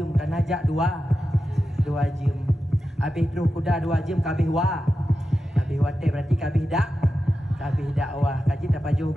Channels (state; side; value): normal; both; correlation 0.91